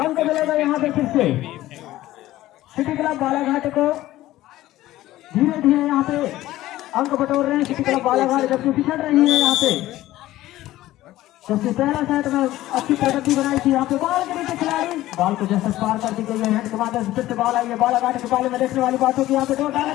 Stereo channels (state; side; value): quieter; right; 15.5 dB